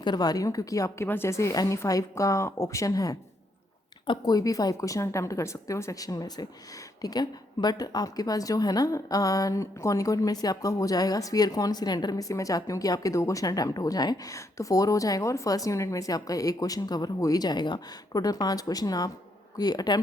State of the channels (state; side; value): normal; both; correlation 0.75